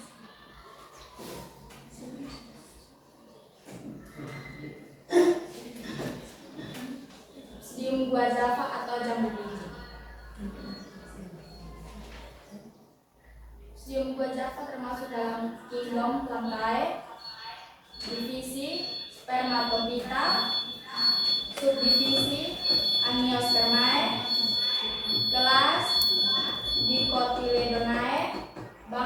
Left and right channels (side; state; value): both; identical; correlation 1.00